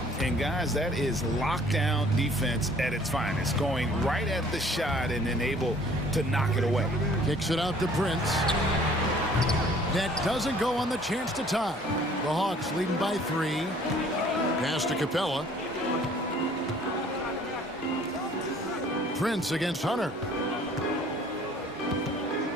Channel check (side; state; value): both; normal; correlation 0.55